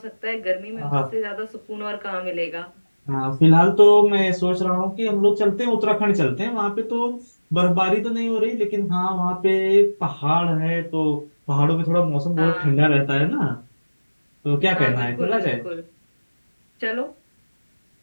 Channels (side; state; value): both; inverted; correlation -1.00